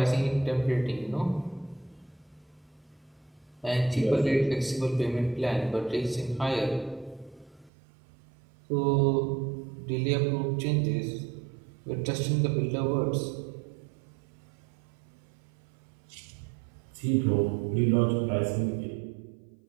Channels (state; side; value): drops out; left; at 7.7 s